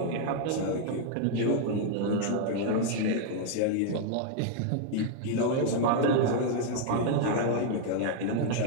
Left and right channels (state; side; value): different; both; correlation 0.00